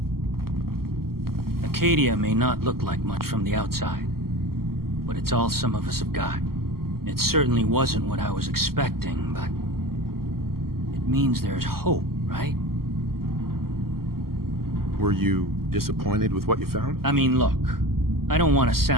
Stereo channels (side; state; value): left; late; 0.93 ms